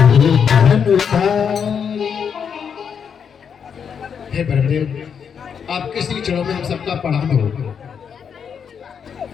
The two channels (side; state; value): right; quieter; 7.1 dB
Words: हे ब्रह्मदेव, आपके श्री चरणों में हम सबका प्रणाम हो।